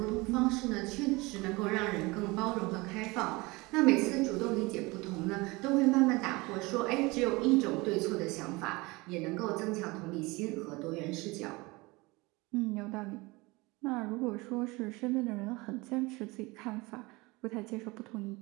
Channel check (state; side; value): quieter; left; 23.7 dB